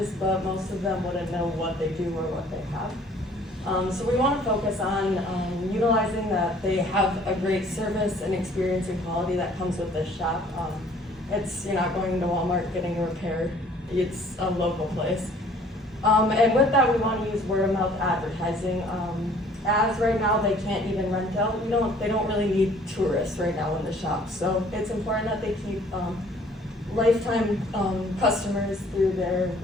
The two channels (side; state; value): both; normal; correlation 0.56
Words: but most of them wouldn't know what they do or what they have. So we want to focus on utilizing that they have a great service and experience and quality that comes with this shop. You're not going to Walmart getting a repair, it's a local place. And with that, we want to use word of mouth advertising. As right now they can't even rent out, they don't really need tourists right now in the shop. So it's important that they keep lifetime customers through their